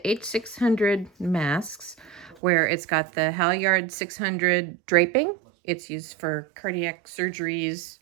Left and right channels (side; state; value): left; drops out; at 2.4 s